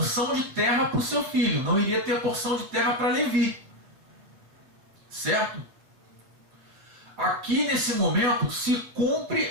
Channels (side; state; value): left; late; 7.9 ms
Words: de terra para o seu filho, não iria ter porção de terra para Levi, certo? Aqui nesse momento se cumpre